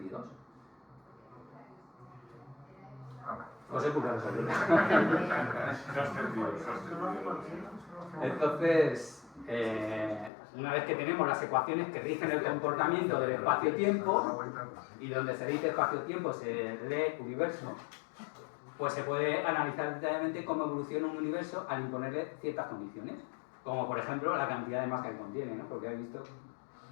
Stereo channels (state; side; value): drops out; right; at 10.3 s